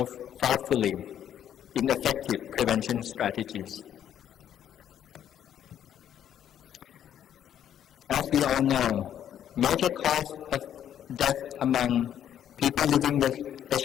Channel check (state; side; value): quieter; right; 10.2 dB